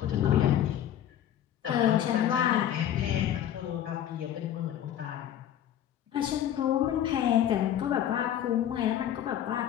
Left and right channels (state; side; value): quieter; right; 10.8 dB